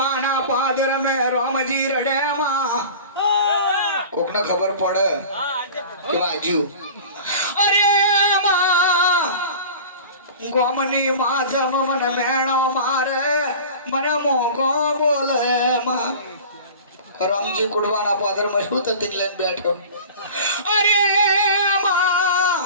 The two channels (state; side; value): inverted; both; correlation -0.38